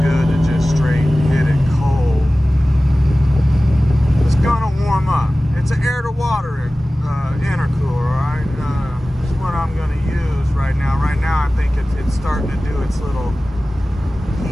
good to just straight hit it cold. It's gonna warm up. It's an air to water intercooler, alright? This is what I'm gonna use right now. Right now I think it's starting to do its little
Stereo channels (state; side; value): normal; both; correlation 0.97